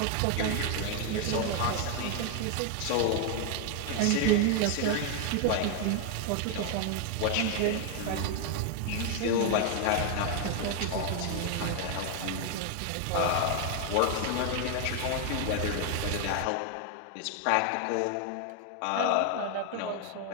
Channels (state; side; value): different; both; correlation 0.00